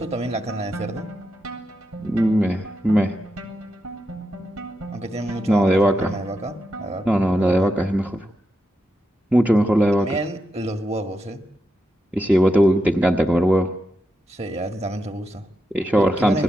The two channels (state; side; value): normal; both; correlation 0.86